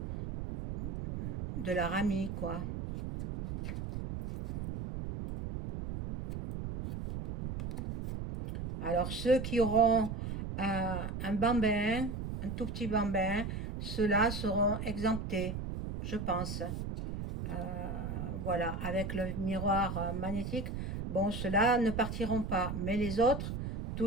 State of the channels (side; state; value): right; noise; rumble, 5 dB below the sound